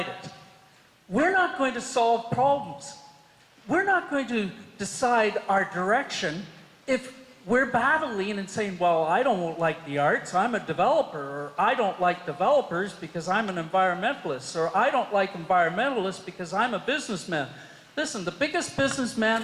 we're not going to solve problems. We're not going to decide our direction if we're battling and saying, well, I don't like the arts, I'm a developer, or I don't like developers because I'm an environmentalist, or I don't like environmentalists because I'm a businessman. Listen, the biggest businessman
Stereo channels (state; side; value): identical; both; correlation 1.00